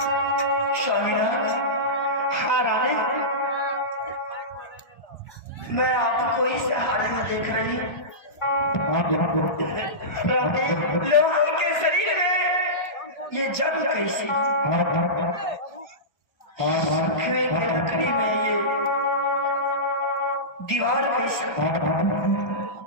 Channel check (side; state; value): right; late; 1.5 ms